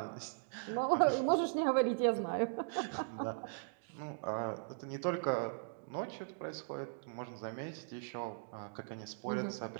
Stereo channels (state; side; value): silent; left; digital silence